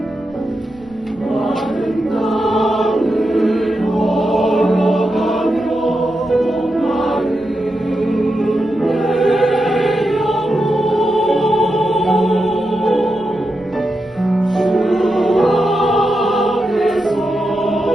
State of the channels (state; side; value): noise; right; rumble, 25 dB below the sound